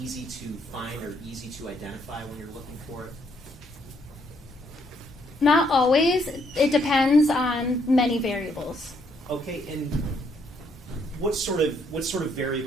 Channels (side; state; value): both; normal; correlation 0.71